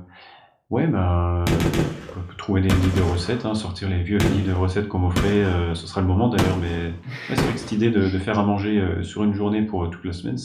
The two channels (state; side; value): identical; both; correlation 1.00